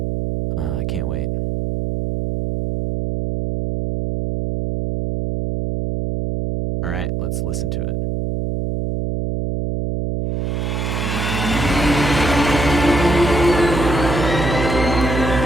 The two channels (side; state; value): right; noise; hum, 1 dB below the sound